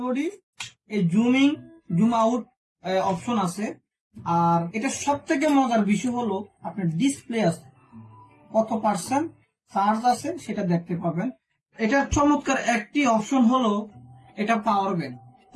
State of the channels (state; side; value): identical; both; correlation 1.00